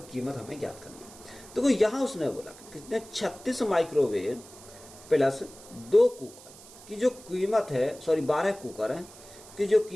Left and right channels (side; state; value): right; noise; hiss, 19 dB below the sound